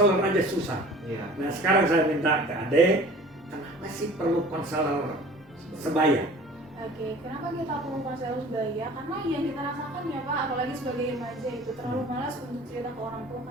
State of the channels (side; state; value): both; normal; correlation 0.45